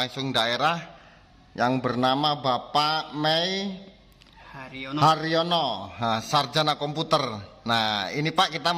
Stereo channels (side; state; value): both; identical; correlation 1.00